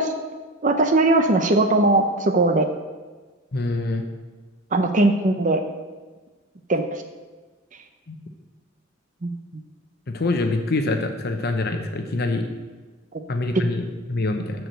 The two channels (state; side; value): normal; both; correlation 0.32